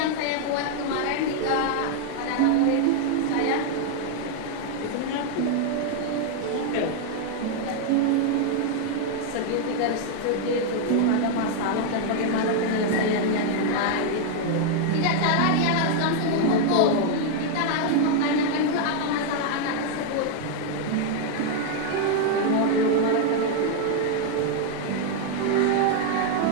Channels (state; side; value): different; both; correlation 0.00